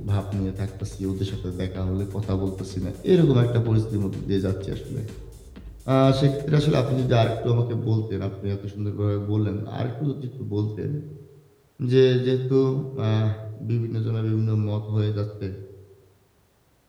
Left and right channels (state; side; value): identical; both; correlation 1.00